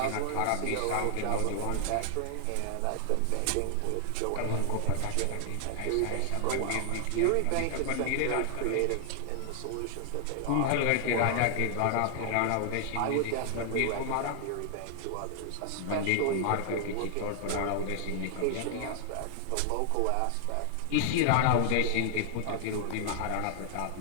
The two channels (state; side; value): different; both; correlation 0.00